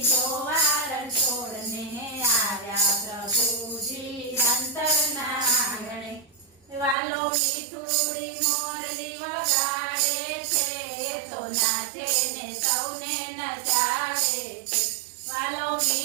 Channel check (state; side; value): drops out; left; at 7.0 s